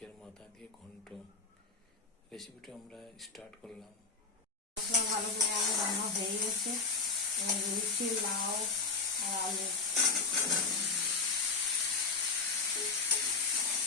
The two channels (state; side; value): quieter; right; 4.3 dB